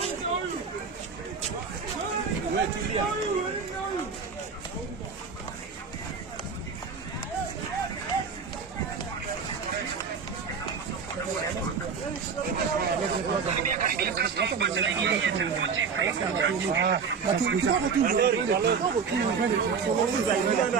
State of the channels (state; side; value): quieter; left; 5.8 dB